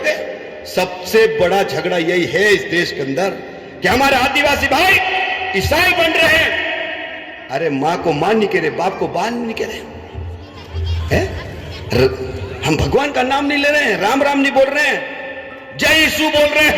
सबसे बड़ा झगड़ा यही है इस देश के अंदर कि हमारे आदिवासी भाई ईसाई बन रहे हैं। अरे मां को मां नहीं कह रहे, बाप को बाप नहीं कह रहे हैं। हम भगवान का नाम नहीं ले रहे हैं, राम राम नहीं बोल रहे हैं, जय यीशु बोल रहे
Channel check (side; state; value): both; identical; correlation 1.00